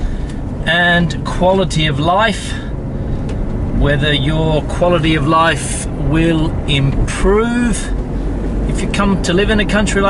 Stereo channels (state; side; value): identical; both; correlation 1.00